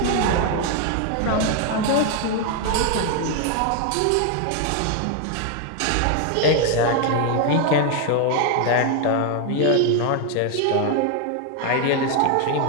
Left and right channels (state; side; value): different; both; correlation 0.01